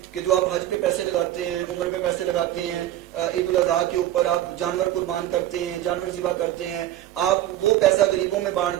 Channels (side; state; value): left; quieter; 13.2 dB